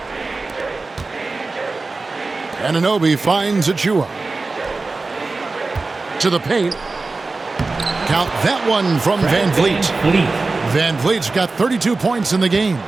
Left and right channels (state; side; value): quieter; left; 3.7 dB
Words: Anunoby finds Achua. To the paint. Count that one from VanVleet. VanVleet's got 32 points in the game.